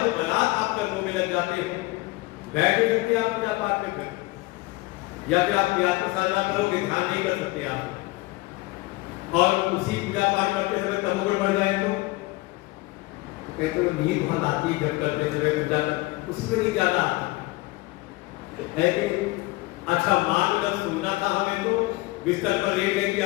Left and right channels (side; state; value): right; quieter; 21.6 dB